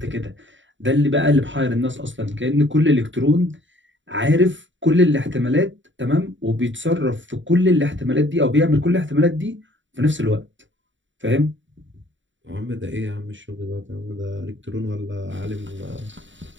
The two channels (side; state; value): left; late; 0.55 ms